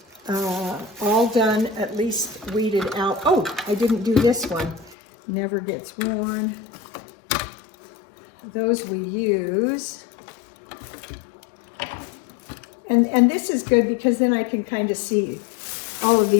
all done, at least weeded out. Oh, I didn't do this one. Never gets worn. Those we use. And this is good because then I can kind of see all of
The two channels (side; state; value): right; drops out; at 5.0 s